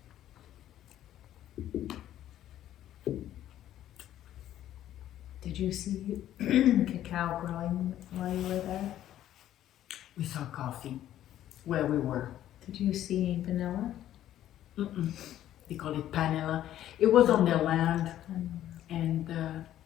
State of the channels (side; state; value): right; quieter; 12.3 dB